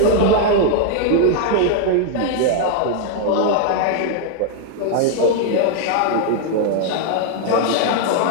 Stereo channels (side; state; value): both; different; correlation 0.00